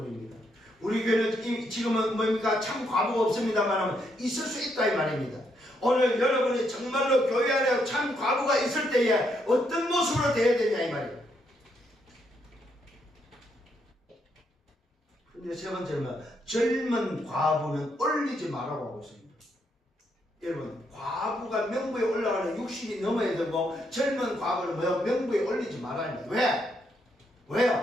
우리 교회는 지금은 뭡니까? 참 과부가 없습니다만 있을 수 있다 이 말입니다. 오늘 여러분이 정말로 교회 안에 참 과부가 있을 때에 어떤 모습으로 되어야 되냐 이 말이에요. 근데 세 번째는 젊은 과부는 올리지 말라고 하고 있습니다. 여러분 과부가 명부에 올라가는 60이 넘어야 되고 젊은 과부는 뭐야? 명부에 올리지 말아야 합니다. 왜?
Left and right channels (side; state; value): both; normal; correlation 0.76